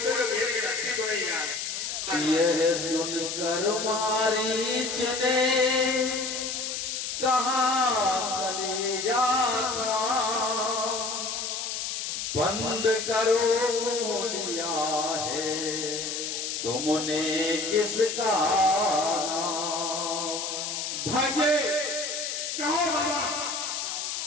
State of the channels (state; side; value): noise; left; hiss, 3 dB below the sound